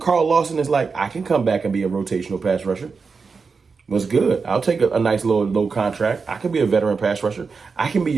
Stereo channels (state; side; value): quieter; left; 5.0 dB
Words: Lawson is like, I can come back and be a rotational pass rusher. Was good. I'll take a nice low contract. I can be a veteran pass rusher. I can be